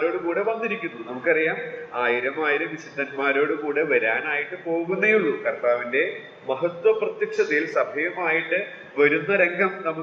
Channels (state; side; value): identical; both; correlation 1.00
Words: കൂടെ വന്നിരിക്കുന്നു. നമുക്കറിയാം 1000 വിശുദ്ധന്മാരോട് കൂടെ വരാനായിട്ട് പോകുന്നേ ഉള്ളൂ. കർത്താവിന്റെ മഹത്വ പ്രത്യക്ഷതയിൽ സഭയുമായിട്ട് വരുന്ന രംഗം